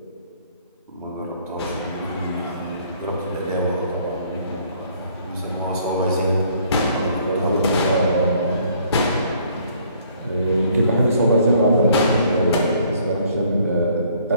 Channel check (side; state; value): both; inverted; correlation -0.61